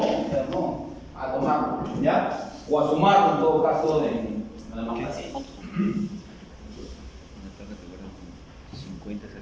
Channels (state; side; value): identical; both; correlation 1.00